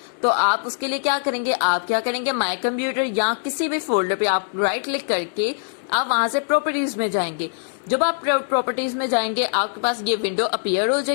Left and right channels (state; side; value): silent; right; digital silence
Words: तो आप उसके लिए क्या करेंगे? आप क्या करेंगे? माय कंप्यूटर या किसी भी फोल्डर पे आप राइट क्लिक करके आप वहां से प्रॉपर्टीज में जाएंगे। जब आप प्रॉपर्टीज में जाएंगे आपके पास ये विंडो अपीयर हो